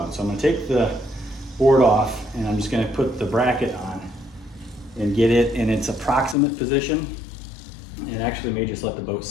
So I'm going to take the board off, and I'm just going to put the bracket on and get it in its approximate position, and actually may just let the boat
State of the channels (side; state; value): right; drops out; at 6.4 s